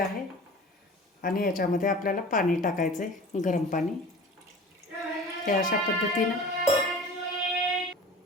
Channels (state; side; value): normal; both; correlation 0.40